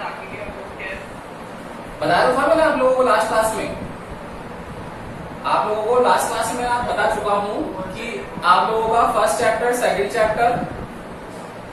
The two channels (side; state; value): both; identical; correlation 1.00